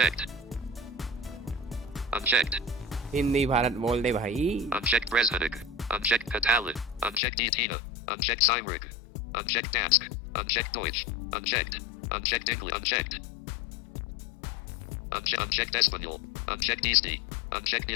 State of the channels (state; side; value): drops out; right; at 7.2 s